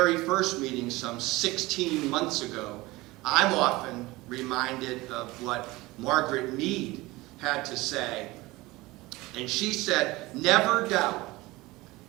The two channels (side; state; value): left; quieter; 20.7 dB